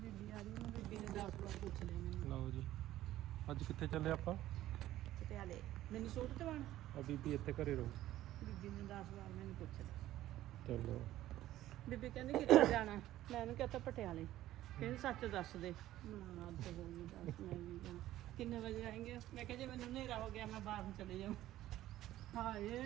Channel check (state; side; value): quieter; left; 14.2 dB